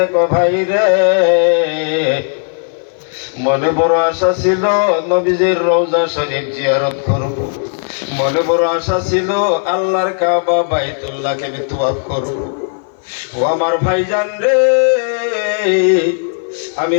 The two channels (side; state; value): right; silent; 56 dB below the other